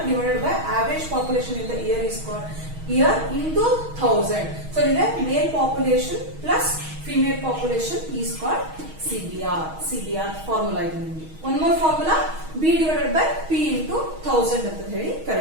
divided by average population in the year is called year into 1000. So here male population plus female population is called CBR. CBR formula ಇದೆ ನಿಮಗೆ. One more formula B divided by P into 1000 ಅಂತ ಹೇಳಿ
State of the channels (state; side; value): late; left; 6.3 ms